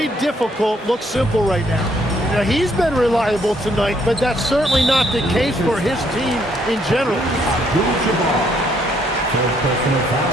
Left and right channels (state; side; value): normal; both; correlation 0.69